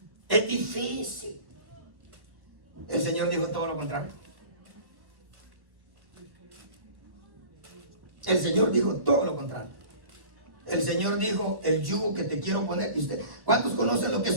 es difícil. El Señor dijo todo lo contrario. El Señor dijo todo lo contrario. El Señor dijo, el yugo que te quiero poner. ¿Y usted, cuántos conocen lo que es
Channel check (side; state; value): left; late; 1.4 ms